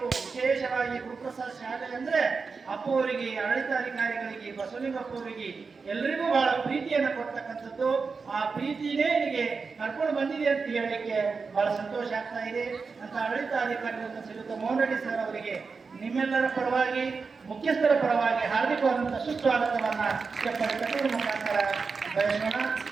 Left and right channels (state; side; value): quieter; left; 4.8 dB